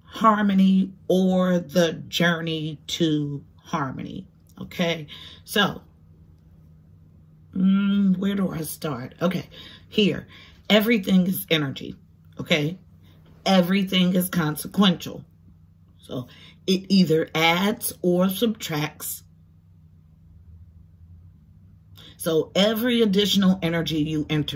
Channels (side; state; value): both; identical; correlation 1.00